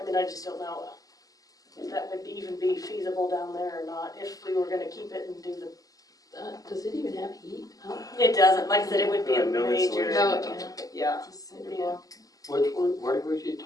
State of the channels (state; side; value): late; right; 0.17 ms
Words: mean, I just don't know if that would even be feasible down there or not, if we were gonna keep it and do the, Does it even have heat? Huh? it doesn't, like I said, it would be a No major, insulation. yeah, It's a it'd cinder be a, block. Which one, where was you